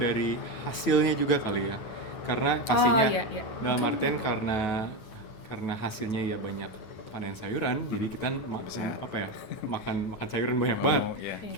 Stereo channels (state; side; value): late; right; 9.4 ms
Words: hasilnya juga kali ya. Karena pastinya dalam artian karena hasilnya ya banyak panen sayuran, jadi kita makan sayuran banyak banget.